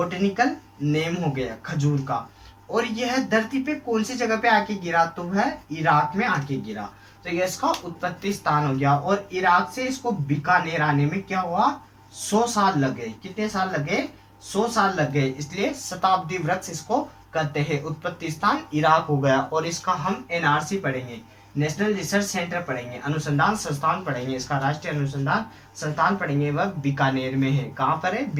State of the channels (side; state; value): both; identical; correlation 1.00